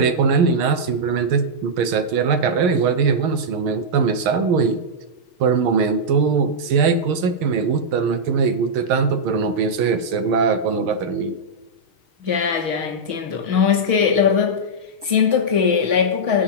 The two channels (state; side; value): late; left; 6.5 ms